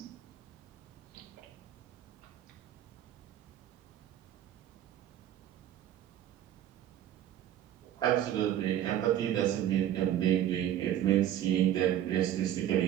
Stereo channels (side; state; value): left; quieter; 11.5 dB